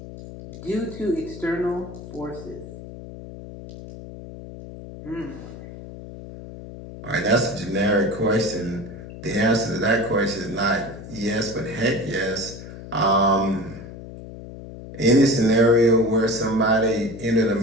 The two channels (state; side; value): noise; left; hum, 13 dB below the sound